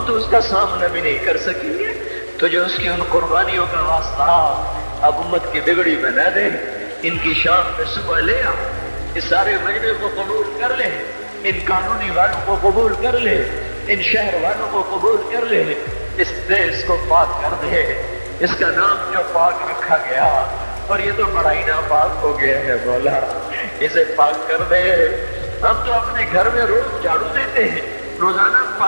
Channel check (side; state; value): both; inverted; correlation -1.00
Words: تو اس کا سامنا بھی نہیں کر سکیں گے، تجھے اس کی ان قربانیوں کا واسطہ اب امت کی بگڑی بنا دے، ان کی شام میں صبح لے آ، اس سارے مجمع کو قبول کر لے، ان قانونی والوں کو قبول کر لے، ان شہر والوں کو قبول کر لے، اس دیش کو پاک کر دے، اس کا نام جو پاک رکھا گیا اور یہ تو بڑا ہی ناپاک ہو گیا ہے مولا، اسے پاک کر دے، ہم تو اپنے گھر میں روز جھاڑو دیتے ہیں، روزانہ